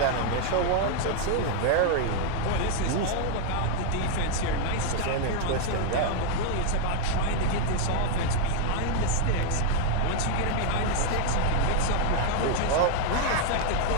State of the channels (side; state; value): both; different; correlation 0.00